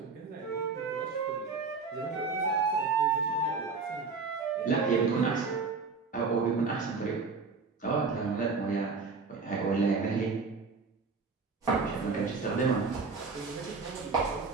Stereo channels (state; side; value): quieter; left; 4.5 dB